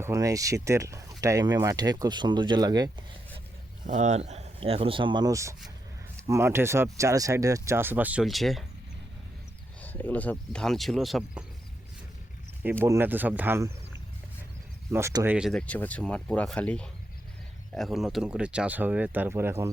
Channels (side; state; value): both; normal; correlation 0.83